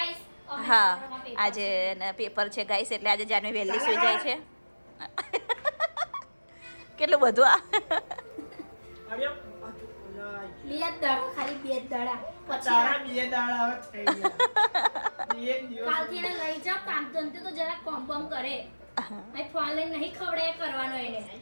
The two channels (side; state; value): both; inverted; correlation -1.00